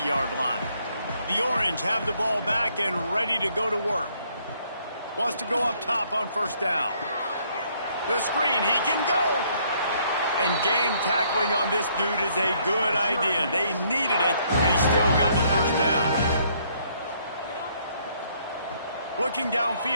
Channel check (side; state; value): both; inverted; correlation -0.67